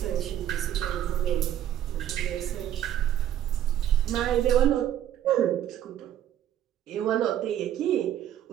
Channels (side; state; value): left; quieter; 11.3 dB